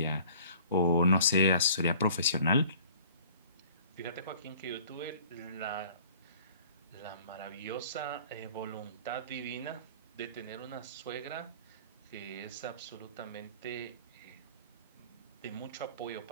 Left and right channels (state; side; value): inverted; both; correlation -0.51